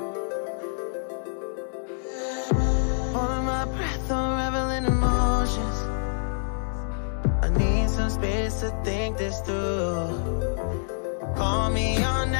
Holding my breath, unraveling emotions. I need some space to think this through. Call me all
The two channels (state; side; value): silent; right; digital silence